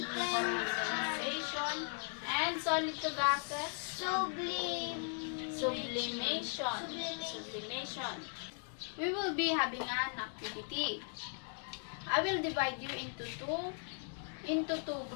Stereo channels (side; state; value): right; silent; 53 dB below the other